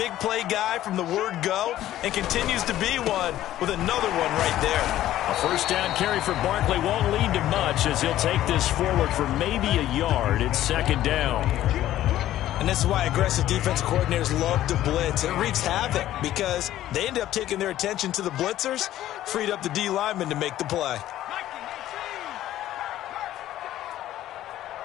play guy from the word go and continues to be one with another one right there. A first down carry for Barkley won't lead to much as he'll take this forward for maybe a yard. It's 2nd down. And this is why aggressive defensive coordinators love to blitz. It wreaks havoc because they end up taking their attention to the blitzers, freed up the D lineman to make the play.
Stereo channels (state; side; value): quieter; right; 13.5 dB